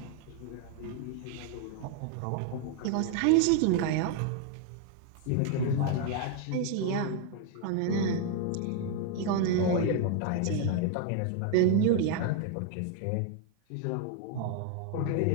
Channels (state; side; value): different; both; correlation 0.00